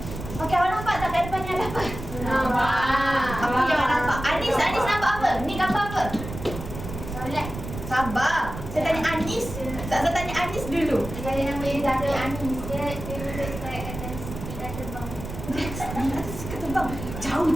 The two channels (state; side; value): noise; right; rumble, 9 dB below the sound